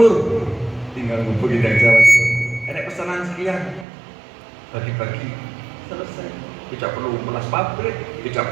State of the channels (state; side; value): drops out; left; at 3.9 s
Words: tinggal hubungi dari Jawa Timur. Ada pesanan sekian, bagi-bagi, selesai. Tidak perlu melas pabrik, tidak